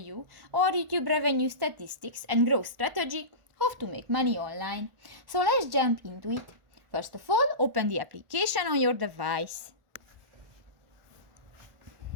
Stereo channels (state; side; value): late; left; 1.4 ms